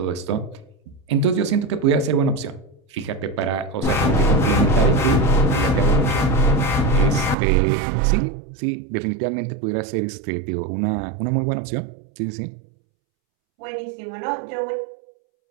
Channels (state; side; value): drops out; left; at 7.4 s